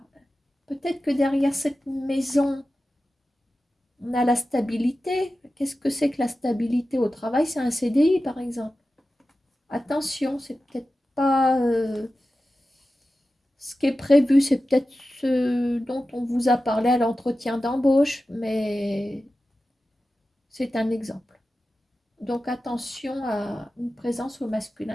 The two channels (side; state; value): both; normal; correlation 0.94